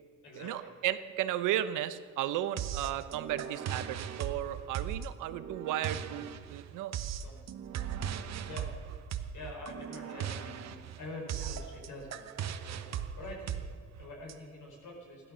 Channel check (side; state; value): left; quieter; 9.4 dB